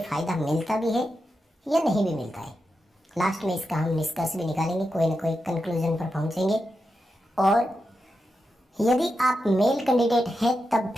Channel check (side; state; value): both; normal; correlation 0.88